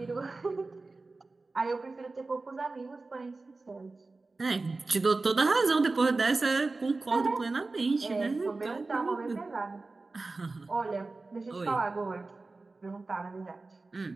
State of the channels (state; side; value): quieter; left; 3.5 dB